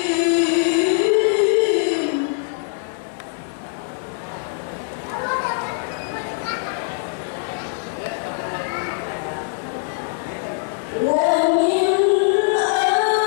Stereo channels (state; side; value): silent; right; digital silence